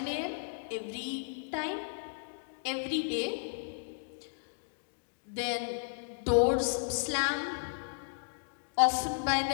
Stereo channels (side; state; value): right; silent; digital silence